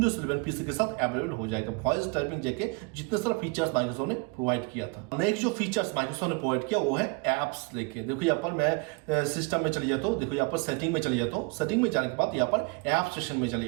11 पीसी के साथ अवेलेबल हो जाएगा। वॉइस टाइपिंग जैसे जितने सारे फीचर्स माइक्रोसॉफ्ट ने प्रोवाइड किया था। नेक्स्ट जो फीचर्स माइक्रोसॉफ्ट ने प्रोवाइड किया वो है एप्स लेके। देखो यहाँ पर मैं सिस्टम में चले जाता हूँ। देखो यहाँ पर सेटिंग में चले जाता हूँ। सेटिंग में जाने के बाद यहाँ पर ऐप सेक्शन में चले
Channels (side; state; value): left; quieter; 29.1 dB